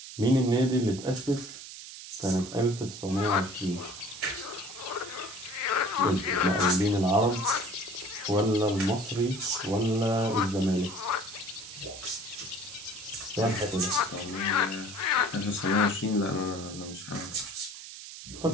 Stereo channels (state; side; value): noise; right; hiss, 13 dB below the sound